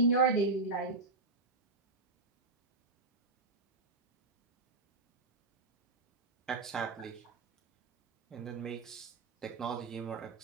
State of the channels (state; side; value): quieter; left; 3.5 dB